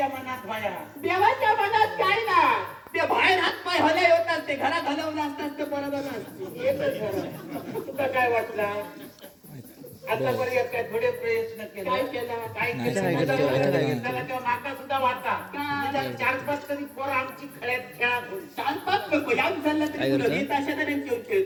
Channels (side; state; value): both; identical; correlation 1.00